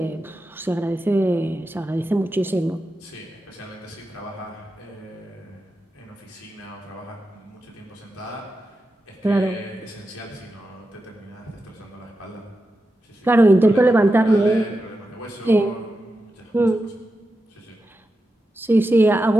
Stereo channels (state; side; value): normal; both; correlation 0.90